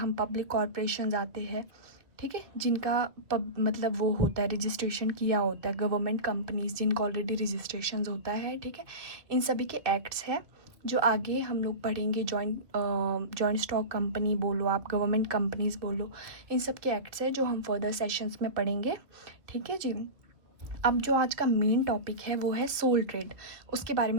पब्लिक कॉरपोरेशंस आते हैं, ठीक है, जिनका मतलब वो होता है, रजिस्ट्रेशन किया होता है, गवर्नमेंट कंपनीज जिनका ऑलरेडी रजिस्ट्रेशन होता है। ठीक है, इन सभी के एक्ट्स है जो आगे हम लोग पढ़ेंगे। जॉइंट स्टॉक कंपनी बोलो आप, गवर्नमेंट कंपनीज बोलो, इन सब के एक्ट्स है जो हम फर्दर सेशंस में पढ़ेंगे। ठीक है जी। अब जो आज का मेन टॉपिक है वो है सोल ट्रेड, उसके बारे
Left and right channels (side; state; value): left; late; 2.6 ms